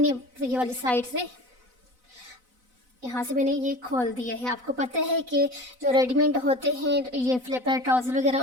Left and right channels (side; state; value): left; late; 4.0 ms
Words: ये वाली साइड से यहाँ से मैंने ये खोल दिया है। आपको पता है कि जो रेडीमेड होते हैं ये फ्लिपर ट्राउज़र वगैरह,